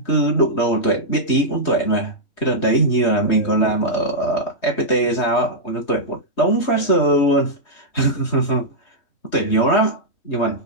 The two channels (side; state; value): right; late; 3.2 ms